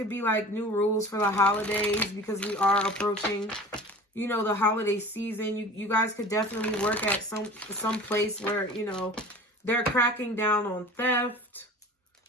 be like new rules for the holidays because we are approaching, you know, the holiday season. You guys could definitely work at some place where, you know, they're cracking down on theft.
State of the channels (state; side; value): normal; both; correlation 0.39